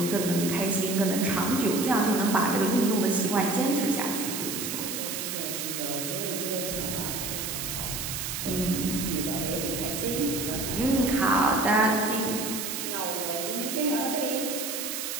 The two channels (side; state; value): right; noise; hiss, 4 dB below the sound